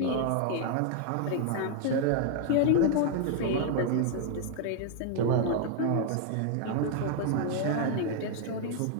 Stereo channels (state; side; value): different; both; correlation 0.00